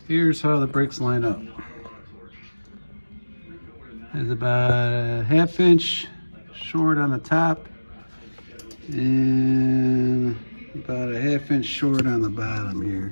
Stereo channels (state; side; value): inverted; both; correlation -1.00